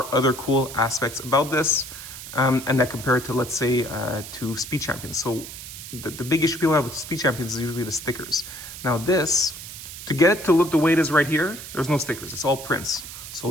other cool aspects about this, and that compared to, let's say, to Speed Champions. So the big issue people have with Speed Champions is usually the stickers. Now this, to get it to look the way it is right here, there's no stickers, it's all prints.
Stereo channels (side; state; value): right; noise; hiss, 12 dB below the sound